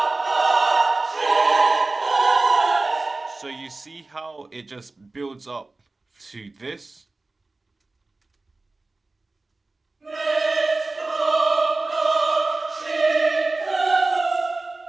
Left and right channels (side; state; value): left; quieter; 3.3 dB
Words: So you see how it just builds up to this,